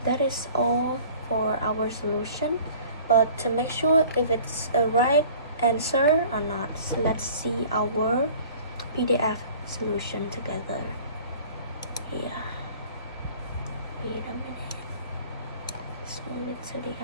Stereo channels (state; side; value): inverted; both; correlation -0.48